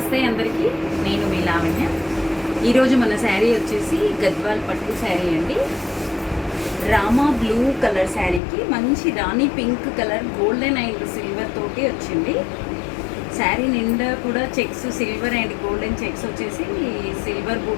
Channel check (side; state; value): right; drops out; at 8.4 s